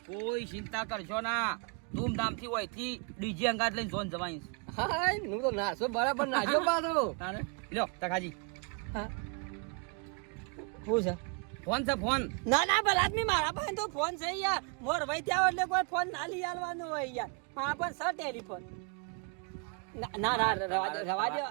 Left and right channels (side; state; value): left; quieter; 37.0 dB